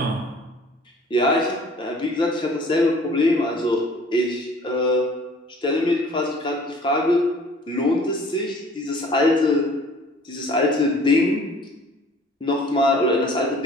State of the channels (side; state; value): both; normal; correlation 0.51